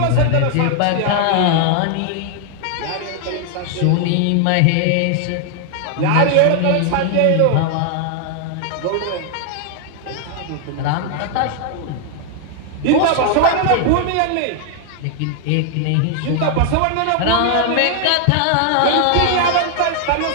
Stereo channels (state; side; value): different; both; correlation 0.00